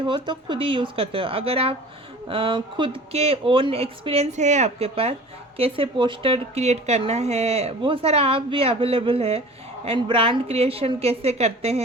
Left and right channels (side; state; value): both; normal; correlation 0.42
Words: तो खुद ही यूज़ करते हो। अगर आप खुद के ओन एक्सपीरियंस है आपके पास, कैसे पोस्टर क्रिएट करना है, वो सारा आप भी अवेलेबल है। एंड ब्रांड क्रिएशन कैसे करते